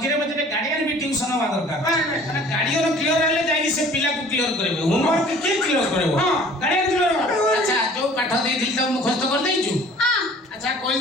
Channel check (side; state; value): both; normal; correlation 0.50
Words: ମଝିରେ ଗାର୍ଡିଆନ ବି ଟ୍ୟୁସନ ହବା ଦରକାର ଗାର୍ଡିଆନ କ୍ଲିୟର ହେଲେ ଯାଇକି ସେ ପିଲାକୁ କ୍ଲିୟର କରିବେ ହୋମୱାର୍କ କିଏ କ୍ଲିୟର କରିବ ଗାର୍ଡିଆନ କ୍ଲିୟର ଆଚ୍ଛା ଯୋଉ ପାଠ ଦେଇଥିଲି ତ ମୁଖସ୍ତ କରିଦେଇଛୁ ଆଚ୍ଛା କହି